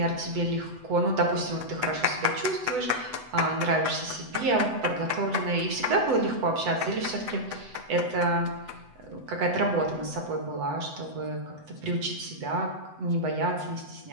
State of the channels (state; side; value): late; left; 8.0 ms